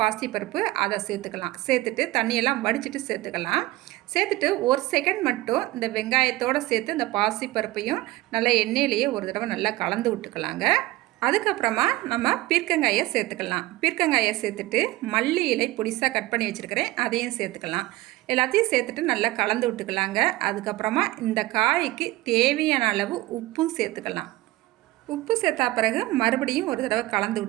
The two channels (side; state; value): left; quieter; 18.4 dB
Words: அதை சேர்த்துக்கலாம். சேர்த்துட்டு தண்ணியெல்லாம் வடிச்சிட்டு சேர்த்துக்கலாம். சேர்த்துட்டு 1 செகண்ட் மட்டும் இந்த வெங்காயத்தோடு சேர்த்து இந்த பாசிப்பருப்பையும் நல்லா எண்ணெயிலேயே ஒரு தடவை நல்லா கலந்து விட்டுக்கலாங்க. அதுக்கப்புறமா நம்ம பீர்க்கங்காயை சேர்த்துக்கலாம். பீர்க்கங்காயை சேர்த்துட்டு மல்லி இலை பொடிசாக கட் பண்ணி வச்சுருக்கிறேன், அதையும் சேர்த்துக்கலாம். எல்லாத்தையும் சேர்த்துட்டு நல்லா கலந்து விட்டுக்கலாங்க. அதுக்கப்புறமா இந்த காய்க்கு தேவையான அளவு உப்பும் சேர்த்துக்கலாம். உப்பு சேர்த்தா பிறகு மறுபடியும் ஒரு தடவை கலந்து